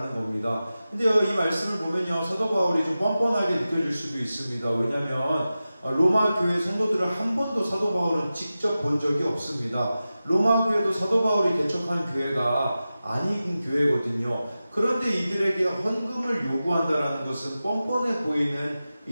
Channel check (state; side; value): inverted; both; correlation -0.94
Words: 겁니다. 근데 이 말씀을 보면요, 사도 바울이 좀 뻔뻔하게 느껴질 수도 있습니다. 왜냐하면 로마 교회 성도들을 한 번도 사도 바울은 직접 본 적이 없습니다. 로마 교회도 사도 바울이 개척한 교회가 아닌 교회거든요. 그런데 이들에게 헌금을 요구한다라는 것은 뻔뻔해 보이는